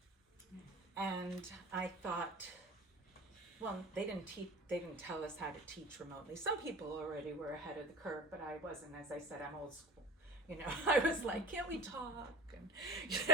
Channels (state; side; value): normal; both; correlation 0.34